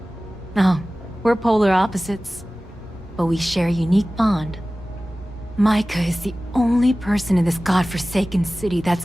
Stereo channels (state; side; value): normal; both; correlation 0.97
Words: Oh, we're polar opposites, but we share a unique bond. Micah is the only person in this godforsaken city that's